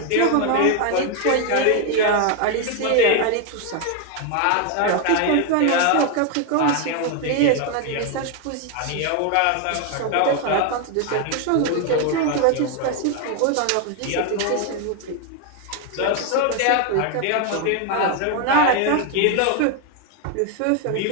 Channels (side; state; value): both; different; correlation 0.01